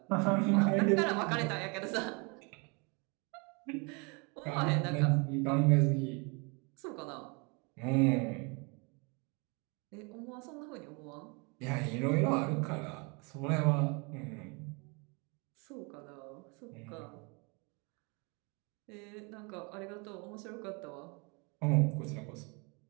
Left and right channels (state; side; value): quieter; left; 31.3 dB